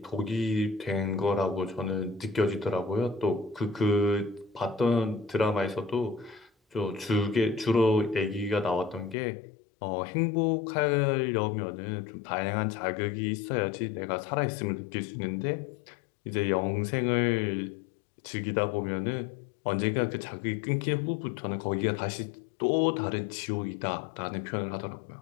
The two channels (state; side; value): drops out; right; at 9.2 s